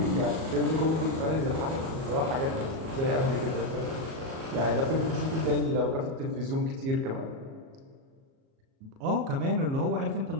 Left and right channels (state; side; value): late; left; 37 ms